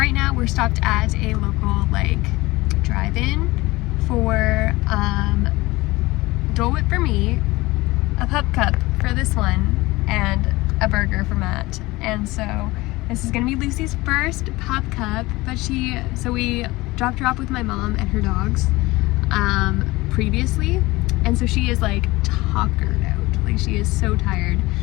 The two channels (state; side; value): quieter; right; 20.6 dB